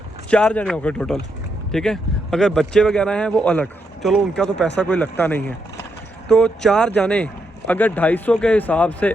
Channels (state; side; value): normal; both; correlation 0.80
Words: 4 जने हो गए टोटल, ठीक है। अगर बच्चे वगैरह हैं वो अलग, चलो उनका तो पैसा कोई लगता नहीं है। तो 4 जाने अगर 250 के हिसाब से